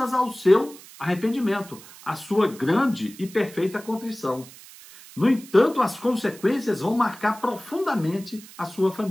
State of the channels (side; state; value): right; noise; hiss, 19 dB below the sound